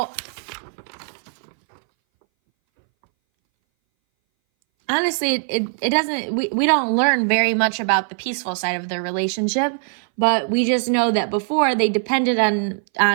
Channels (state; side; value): silent; left; 61 dB below the other